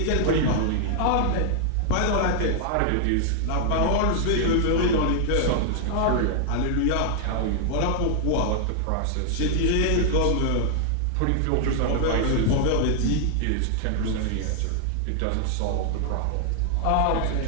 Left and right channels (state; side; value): different; both; correlation 0.00